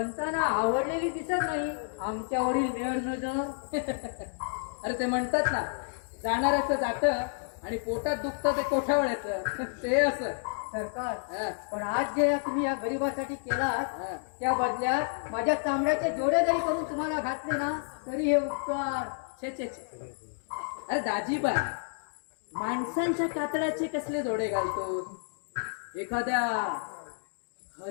आवडलेली दिसत नाही आमच्यावरील मेळ नजर. अरे ते म्हणतात ना, जाणाऱ्याचं जातं आणि पोटात दुखतं ते कोठावर येतं. ते असं. सरकार हा. पण आज जे तुम्ही या गरिबासाठी केलात हा. त्या बदल्यात माझ्या चामड्याचे जोडे जरी करून तुम्हाला घातले ना तरी हे उपकार. छे छे छे. अरे दाजीबा, माणसांच्या कातड्याचे कसले जोडे घालतो. एखाद्या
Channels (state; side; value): silent; right; digital silence